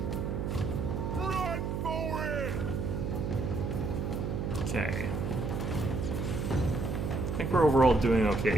Run for it! Okay. I think we're overall doing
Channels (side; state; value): right; noise; hum, 2 dB below the sound